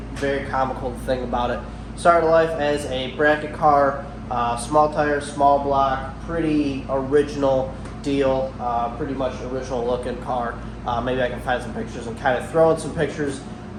very comical to think about it. Started life as a bracket car, small tire, small block, pretty original deal, pretty much original looking car. Maybe I can find some pictures and kind of throw in some pictures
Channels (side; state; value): both; identical; correlation 1.00